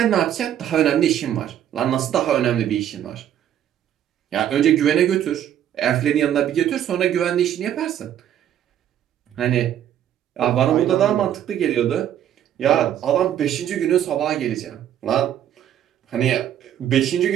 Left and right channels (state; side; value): quieter; left; 10.6 dB